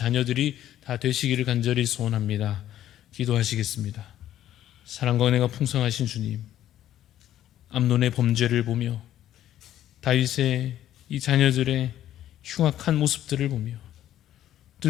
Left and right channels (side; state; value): right; quieter; 12.2 dB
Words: 다 되시기를 간절히 소원합니다. 기도하시겠습니다. 사랑과 은혜가 풍성하신 주님, 암논의 범죄를 보며 다윗의 이 자녀들의 흉악한 모습들을 보며